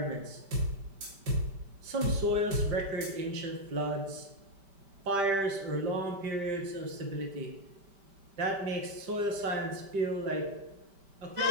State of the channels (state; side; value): late; left; 5.1 ms